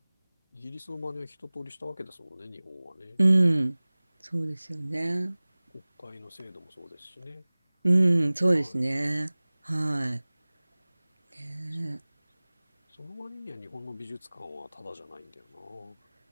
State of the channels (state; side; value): inverted; both; correlation -1.00